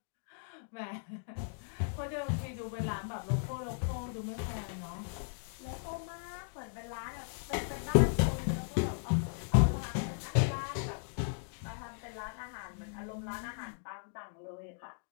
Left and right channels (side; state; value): right; silent; digital silence